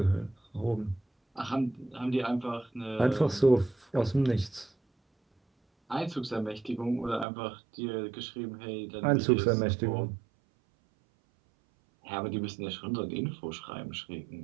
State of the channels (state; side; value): drops out; left; at 7.2 s